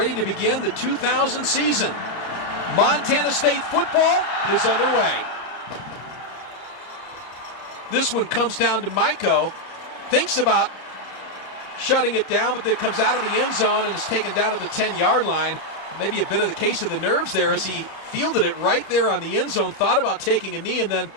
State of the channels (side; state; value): right; late; 32 ms